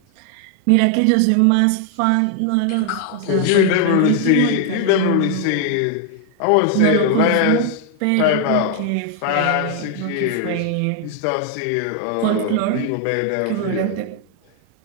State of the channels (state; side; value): different; both; correlation 0.00